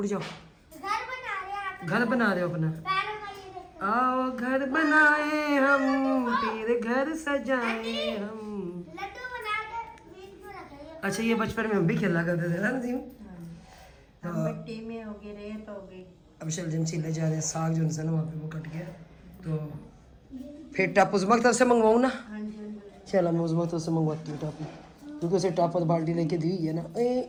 जाओ। घर बना रहे हैं आप, घर बना रहे हो अपना? पैरों का ये देखो। आओ घर बनाए हम, फिर घर सजाए हम। लड्डू बना के बीच में रखेंगे। अच्छा, ये बचपन में हम भी खेला करते थे ना नसीम? हम मिट्टी में हो गए, रेत हो गई। अब शलजम छीले जा रहे हैं, साग जो है ना वहाँ पे वो कट गया, तो फिर टाप उस तरफ से मंगवाऊँ ना? चलो मैं उस तरफ से मंगवाती हूँ टाप, क्योंकि उसे टाप और बाल्टी लेके दी है ना।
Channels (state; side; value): identical; both; correlation 1.00